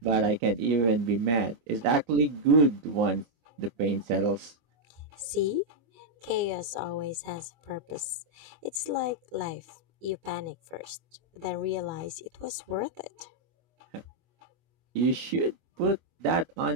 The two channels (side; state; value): left; late; 25 ms